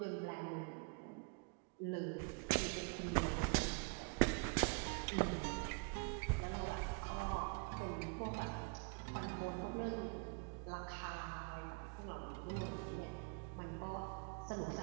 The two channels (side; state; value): left; quieter; 28.8 dB